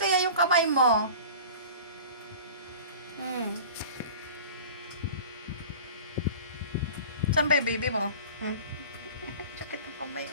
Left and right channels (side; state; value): both; inverted; correlation -0.39